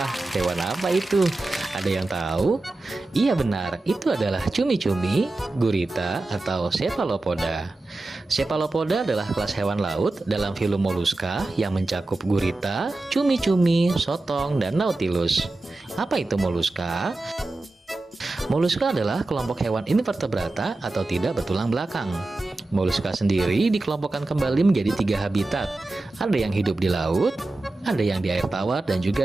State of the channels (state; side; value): quieter; left; 3.0 dB